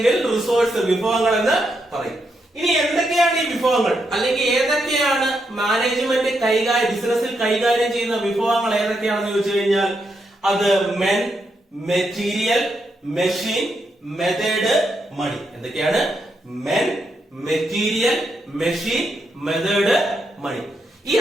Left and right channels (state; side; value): normal; both; correlation 0.81